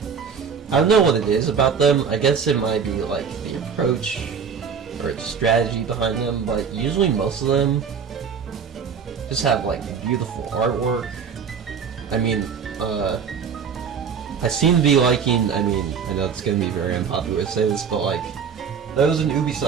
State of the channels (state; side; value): quieter; left; 6.6 dB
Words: I don't know what it is about them. I guess it might be like the approach or the strategy behind them, but usually most of them just have like beautiful artwork. I mean, I seem to be liking, I mean, I know it's gonna be very unpopular to say this, but like, there was an